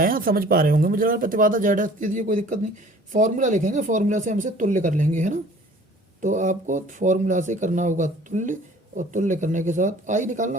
समझ पा रहे होंगे मुझे लगा प्रतिबाधा जेड एस दे दिए, कोई दिक्कत नहीं। फॉर्मूला लिखेंगे, फॉर्मूला से हमसे तुल्य कर लेंगे, है ना। तो आपको फॉर्मूला से करना होगा तुल्य, और तुल्य करने के साथ आई निकालना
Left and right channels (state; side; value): normal; both; correlation 0.50